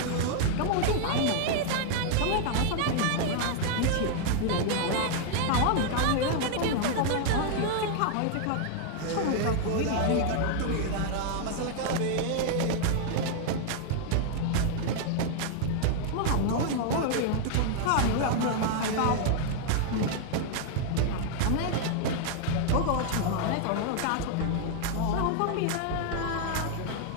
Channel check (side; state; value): both; different; correlation 0.00